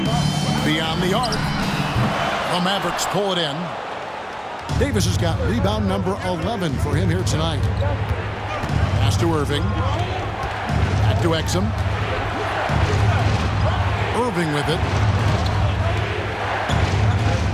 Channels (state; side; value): identical; both; correlation 1.00